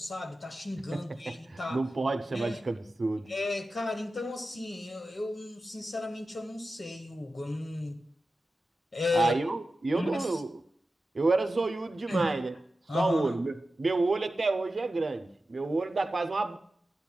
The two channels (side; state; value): both; normal; correlation 0.93